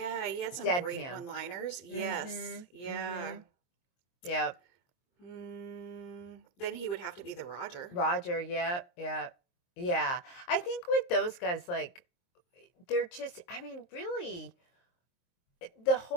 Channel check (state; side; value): late; right; 23 ms